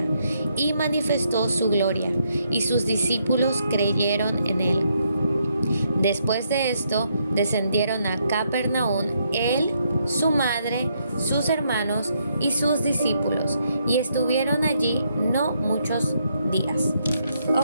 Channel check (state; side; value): inverted; both; correlation -0.76